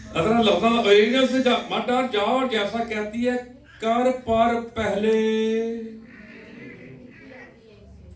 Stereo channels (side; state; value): both; identical; correlation 1.00